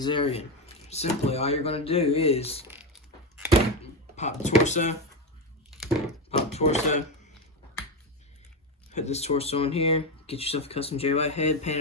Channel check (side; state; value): both; normal; correlation 0.13